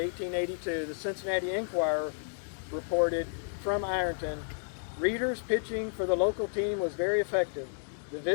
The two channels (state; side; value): silent; right; digital silence